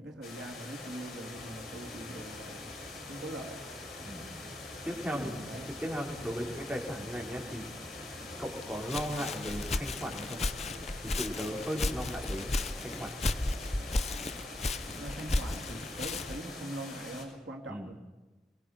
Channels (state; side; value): normal; both; correlation 0.81